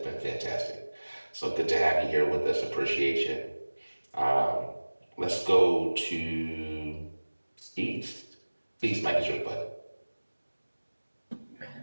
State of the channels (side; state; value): both; inverted; correlation -1.00